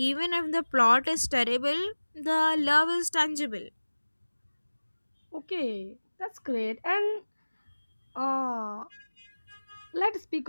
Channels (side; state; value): both; inverted; correlation -1.00